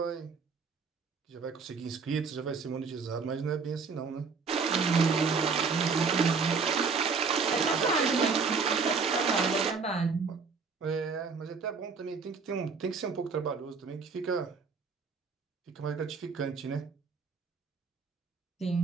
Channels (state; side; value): quieter; left; 5.1 dB